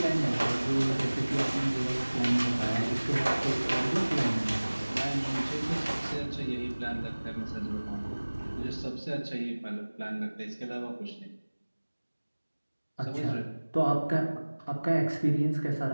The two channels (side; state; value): both; inverted; correlation -1.00